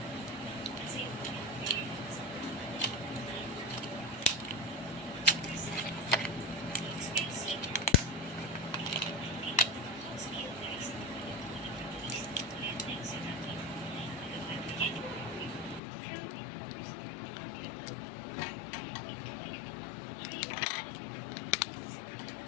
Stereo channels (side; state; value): right; drops out; at 15.8 s